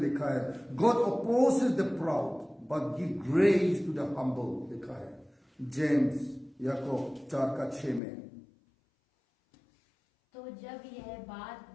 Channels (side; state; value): right; drops out; at 8.0 s